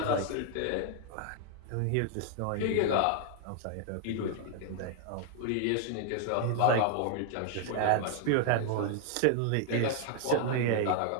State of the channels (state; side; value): different; both; correlation 0.00